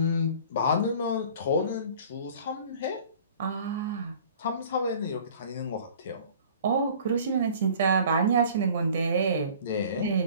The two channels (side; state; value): both; inverted; correlation -0.47